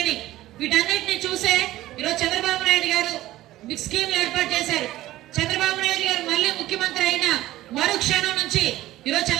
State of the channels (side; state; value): left; quieter; 15.7 dB